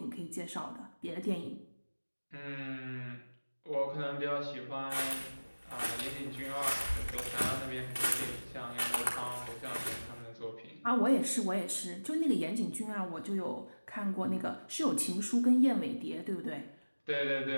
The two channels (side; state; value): both; inverted; correlation -1.00